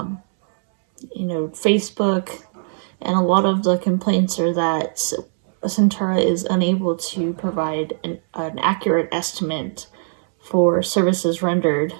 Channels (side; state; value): left; silent; 65 dB below the other